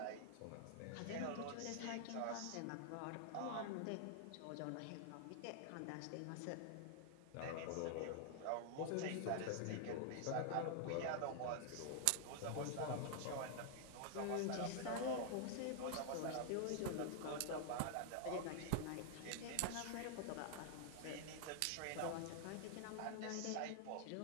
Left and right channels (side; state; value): both; different; correlation 0.00